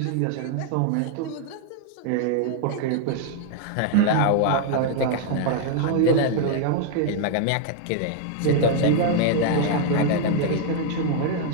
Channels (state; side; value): different; both; correlation 0.00